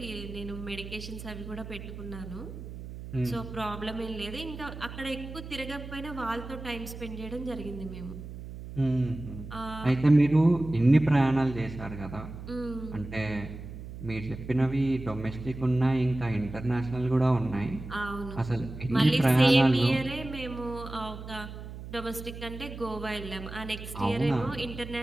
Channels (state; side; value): noise; right; hum, 11 dB below the sound